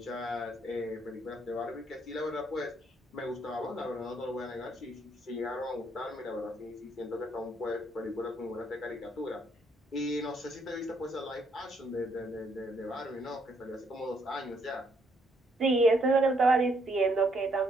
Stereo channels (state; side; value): normal; both; correlation 0.71